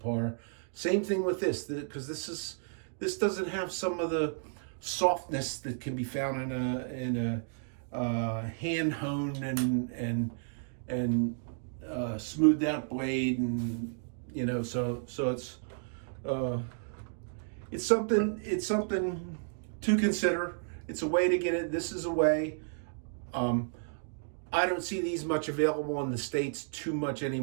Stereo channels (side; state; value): left; silent; digital silence